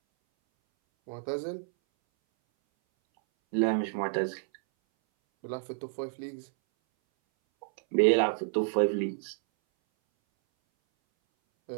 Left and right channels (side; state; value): left; silent; 58 dB below the other